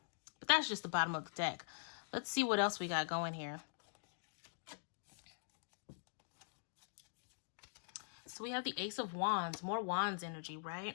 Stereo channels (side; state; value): right; silent; digital silence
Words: But that's just the bottom of the deck. Let's see what else we got going here. So we have the Ace of Wands, more Wands energy,